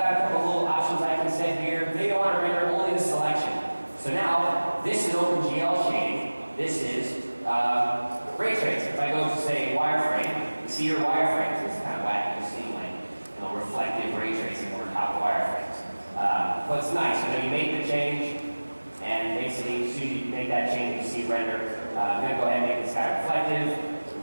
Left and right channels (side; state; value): both; inverted; correlation -1.00